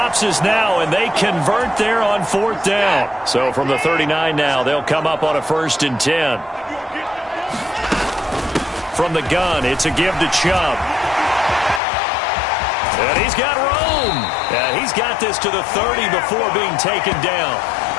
is now, and they convert there on 4th down. So from the 39 now, they'll come up on a 1st and 10. From the gun, it's a give to Chubb. And he's got room. And he's got this to the 30 before being taken down.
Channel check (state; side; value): drops out; right; at 11.8 s